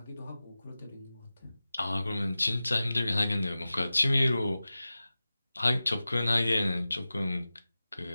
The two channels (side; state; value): both; inverted; correlation -0.95